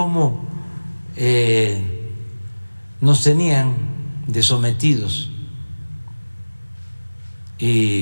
nos tenían de sometidos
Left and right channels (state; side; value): inverted; both; correlation -1.00